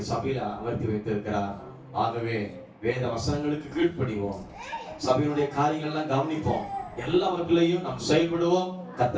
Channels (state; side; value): identical; both; correlation 1.00